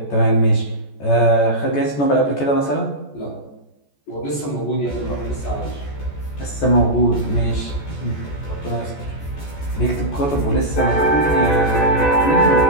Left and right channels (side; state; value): right; late; 14 ms